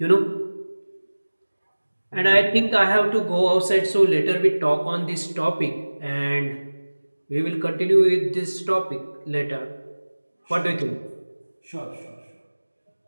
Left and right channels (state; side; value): inverted; both; correlation -1.00